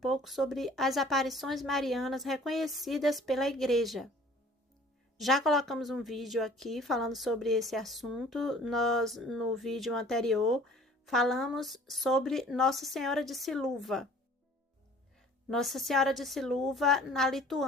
sobre as aparições marianas reconhecidas pela Igreja. Já colocamos um vídeo aqui falando sobre esse assunto. Nós, no vídeo anterior, falamos sobre Nossa Senhora de Siluva. Nossa Senhora de Siluva, na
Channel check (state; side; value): normal; both; correlation 0.51